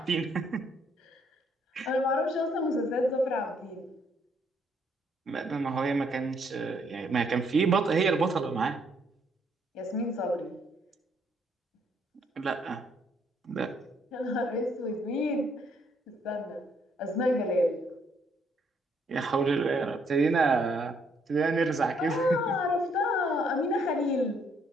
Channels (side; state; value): both; normal; correlation 0.69